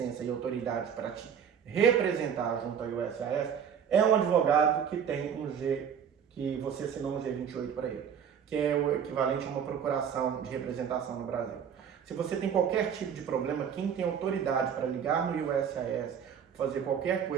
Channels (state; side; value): quieter; left; 7.8 dB